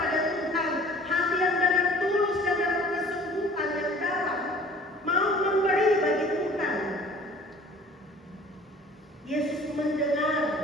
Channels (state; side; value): normal; both; correlation 0.49